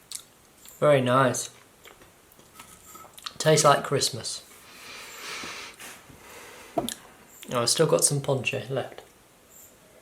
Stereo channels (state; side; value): identical; both; correlation 1.00